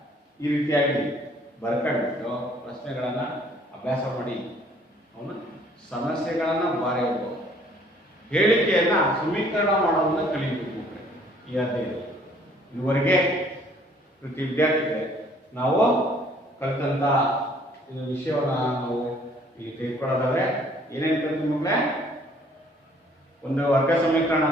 ಈ ರೀತಿಯಾಗಿ ಬರ್ಕೊಂಡ್ಬಿಟ್ಟು ಪ್ರಶ್ನೆಗಳನ್ನು ಅಭ್ಯಾಸ ಮಾಡಿ ಅವನು ಸಮಸ್ಯೆಗಳನ್ನು ಬರೆಯಬೇಕು. ಹೇಳಿಕೆಯನ್ನ ಸಮೀಕರಣ ಮಾಡೋದನ್ನ ಕಲಿಯಬೇಕು. ಈ ಅಧ್ಯಾಯ ಇದುವರೆಗೆ ಪ್ರತಿ ವಿದ್ಯಾರ್ಥಿಗಳೇ ನಾವು ಕಲಿತಂತ ವಿಷಯವನ್ನು ನಾವು ಇಲ್ಲಿ ತೆಗೆದುಕೊಳ್ಳೋದಾದ್ರೆ ಏನೇನು ಕಲಿತು ಮಕ್ಕಳೇ? ಒಂದು ವರ್ಗ ಸಮೀಕರಣ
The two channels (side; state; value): both; normal; correlation 0.59